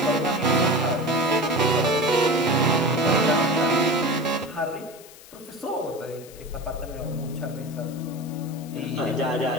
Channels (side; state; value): left; noise; hiss, 20 dB below the sound